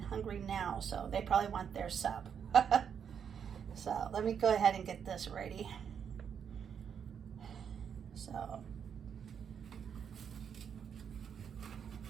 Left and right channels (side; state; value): left; quieter; 7.6 dB